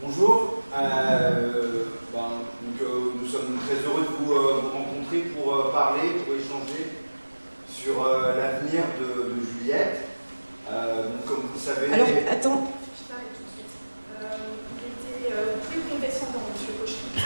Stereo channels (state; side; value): inverted; both; correlation -1.00